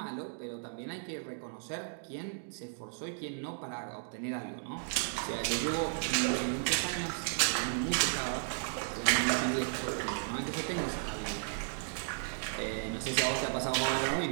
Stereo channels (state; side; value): silent; left; digital silence